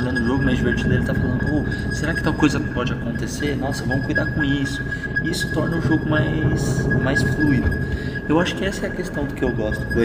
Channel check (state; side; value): identical; both; correlation 1.00